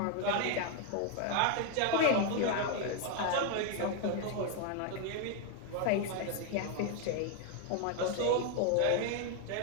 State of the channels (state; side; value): different; both; correlation 0.01